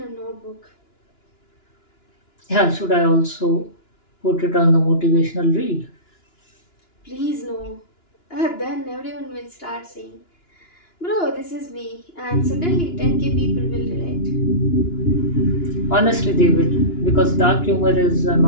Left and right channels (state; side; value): late; right; 2.9 ms